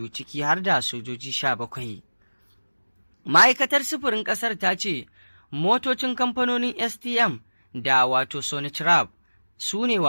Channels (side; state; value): both; inverted; correlation -1.00